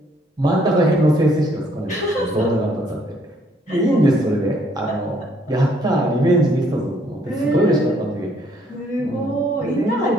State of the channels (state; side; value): normal; both; correlation 0.66